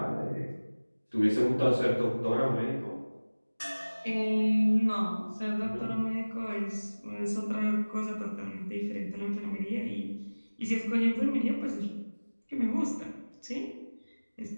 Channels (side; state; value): both; inverted; correlation -1.00